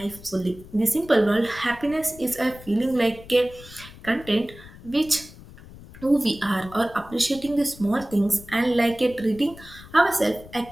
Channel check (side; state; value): left; noise; rumble, 18 dB below the sound